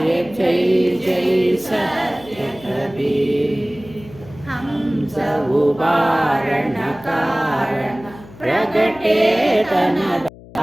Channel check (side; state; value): left; noise; hum, 20 dB below the sound